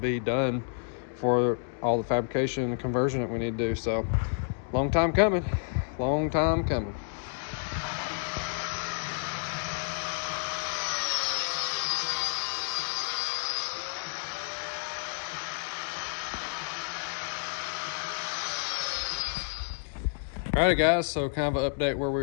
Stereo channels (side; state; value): right; silent; digital silence